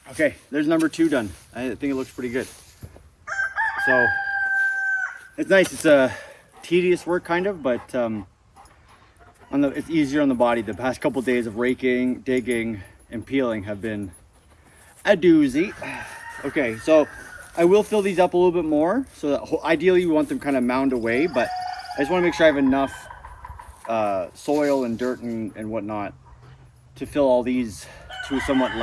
Okay, there's number 2 done. I think it looks pretty good. So, it's nice. It's a tedious work kind of, but it's easier on the body. The past couple days of raking, digging, and peeling have been a doozy. Okay, so I will fill these up a little bit more. So that ideally we want them kind of mound away, but I just want to make sure I have enough soil and dirt and whatnot to fill all these to a somewhat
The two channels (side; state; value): both; identical; correlation 1.00